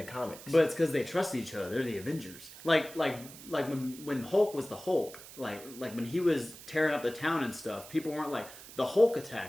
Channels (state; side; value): noise; right; hiss, 16 dB below the sound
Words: comics. But it's because they trusted each other. They're the Avengers. Like when Hulk was the Hulk, like when he was tearing up the town and stuff, people weren't like, the Hulk